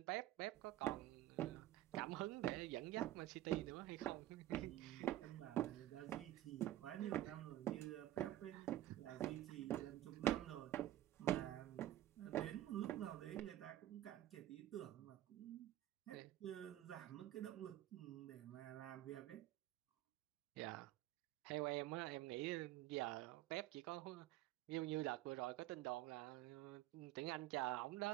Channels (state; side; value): quieter; left; 14.2 dB